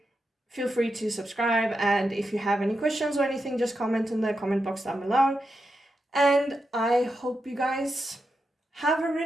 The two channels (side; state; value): both; normal; correlation 0.87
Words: feel free to subscribe. And if you have any questions or anything, just comment in the comment box down below. And I hope you guys have a